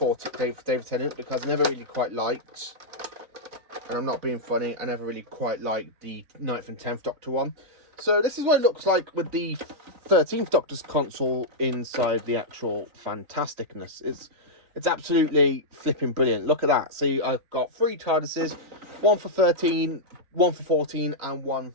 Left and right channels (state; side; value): late; left; 3.9 ms